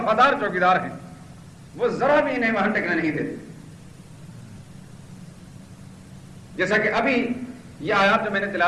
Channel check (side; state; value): both; identical; correlation 1.00